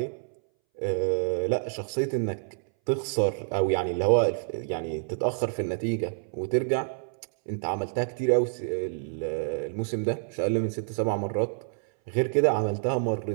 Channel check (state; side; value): silent; left; 59 dB below the other